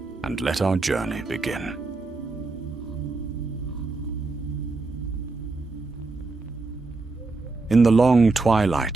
and let our journey begin. In the long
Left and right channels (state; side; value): quieter; left; 3.6 dB